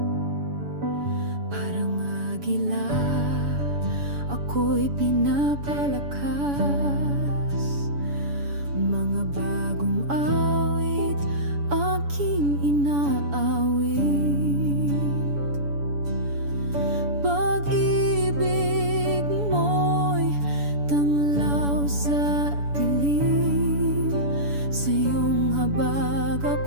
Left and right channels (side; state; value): left; late; 7.0 ms